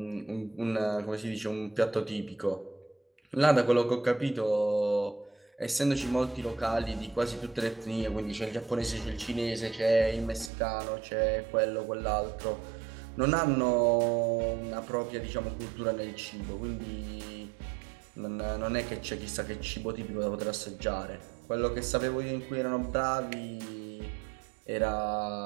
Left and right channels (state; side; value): drops out; left; at 10.5 s